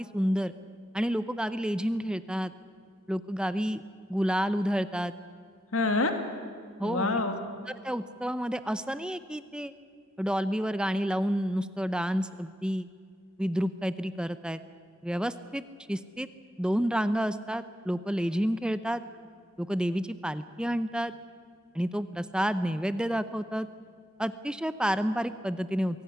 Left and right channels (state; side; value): normal; both; correlation 0.85